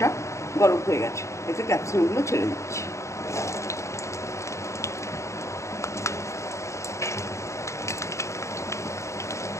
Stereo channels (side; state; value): right; late; 0.14 ms